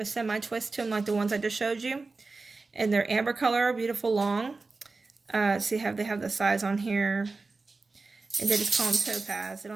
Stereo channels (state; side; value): quieter; left; 3.8 dB